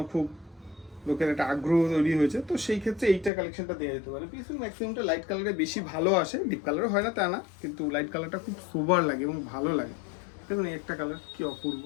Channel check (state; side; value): drops out; right; at 3.3 s